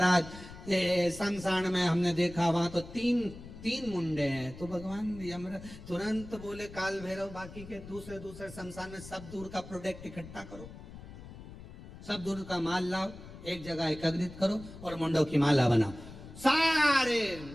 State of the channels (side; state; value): left; noise; rumble, 15 dB below the sound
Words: शमशान में हमने देखा वहां तो तीन मुंडे हैं। तो भगवान यमराज तुरंत बोले काल भैरव बाकी के दूसरे दूसरे शमशान में सब दूर का प्रोडक्ट इकट्ठा करो, सब दूर का माल लाओ, एक जगह एकत्रित करो और मुंडों की माला बनाओ। सारे